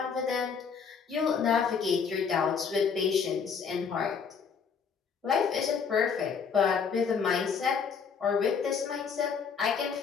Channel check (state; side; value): quieter; right; 6.2 dB